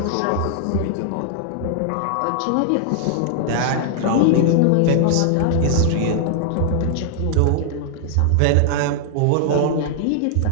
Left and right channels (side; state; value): both; different; correlation -0.01